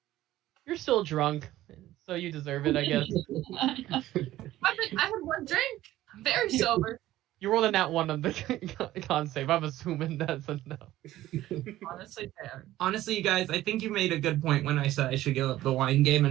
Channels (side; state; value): left; quieter; 14.9 dB